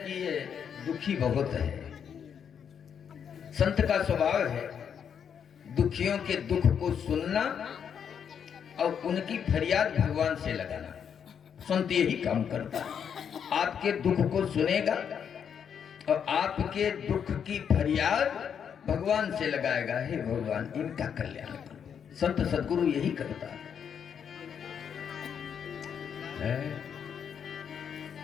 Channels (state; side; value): quieter; right; 7.7 dB